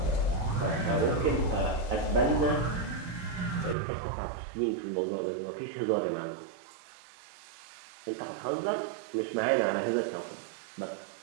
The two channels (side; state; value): left; drops out; at 3.8 s